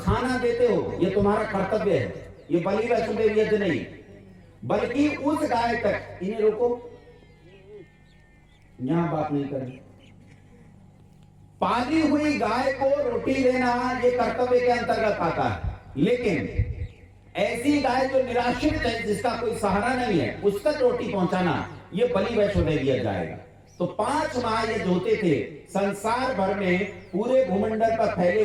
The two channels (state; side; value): identical; both; correlation 1.00